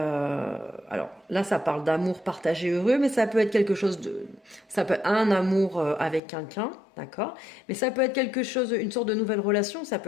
là, ça parle d'amour partagé heureux, mais ça peut être quelque chose de... Ça peut être un amour avec quelqu'un, d'accord? Mais ça peut être quelque chose, une sorte de nouvelle relation. Ça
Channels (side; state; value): right; drops out; at 6.2 s